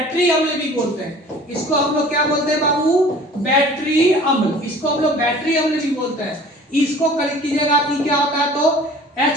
अम्ल भी बोलते हैं। इसको हम लोग क्या बोलते हैं बाबू, बैटरी अम्ल, इसको हम लोग बैटरी अम्ल भी बोलते हैं। इसको कलेक्ट कीजिएगा आप, क्या होता है, तो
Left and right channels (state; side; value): normal; both; correlation 0.46